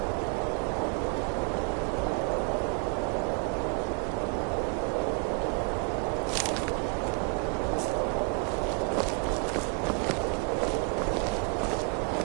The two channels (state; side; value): quieter; left; 35.1 dB